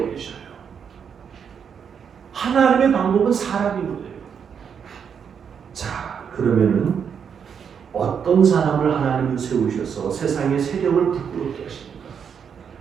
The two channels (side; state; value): left; quieter; 7.2 dB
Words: 버리셔요. 하나님의 방법은 사람이거든요. 자, 그러면은 어떤 사람을 하나님은 세우셔서 세상의 세력을 부끄럽게 하십니까?